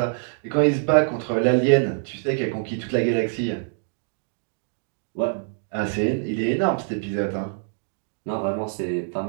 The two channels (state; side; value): silent; left; digital silence